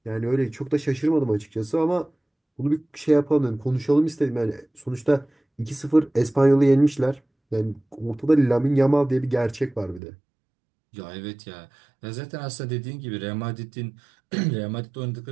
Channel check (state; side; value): drops out; left; at 10.0 s